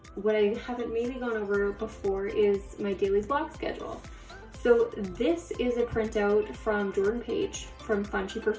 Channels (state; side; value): identical; both; correlation 1.00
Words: what I haven't maybe gone over before is my daily block schedule. So this is a printout from Jordan Page from